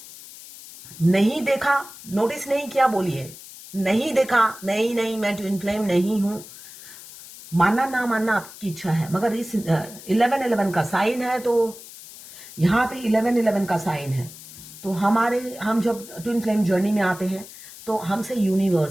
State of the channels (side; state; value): left; noise; hiss, 16 dB below the sound